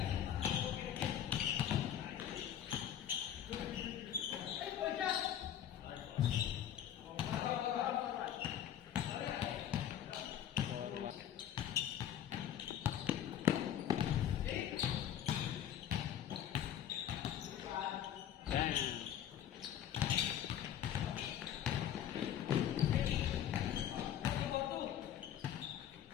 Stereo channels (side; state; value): right; quieter; 10.4 dB